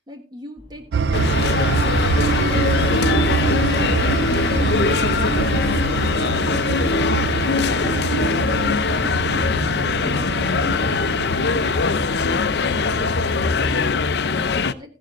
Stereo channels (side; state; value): both; normal; correlation 0.31